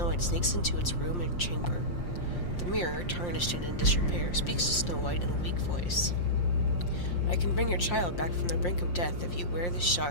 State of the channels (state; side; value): late; right; 5.7 ms